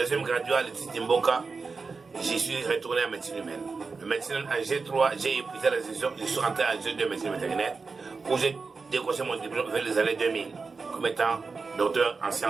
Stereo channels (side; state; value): left; quieter; 4.5 dB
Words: graduat à l'Institut Mboka, j'y suis retourné en médecine humaine. Le médecine en G3, j'ai épuisé la session, je suis rentré en G2 médecine vétérinaire où j'ai décroché mon diplôme vers les années 2000 comme étant docteur en